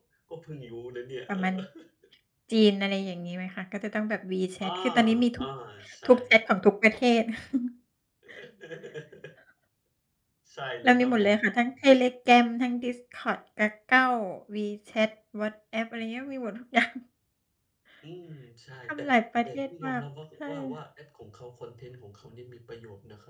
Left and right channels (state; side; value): identical; both; correlation 1.00